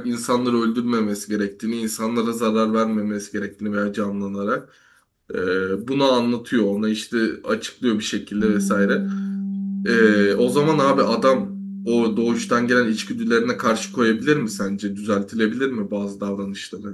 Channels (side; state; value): both; identical; correlation 1.00